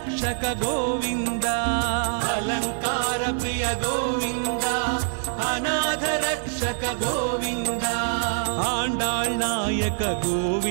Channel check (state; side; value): silent; left; digital silence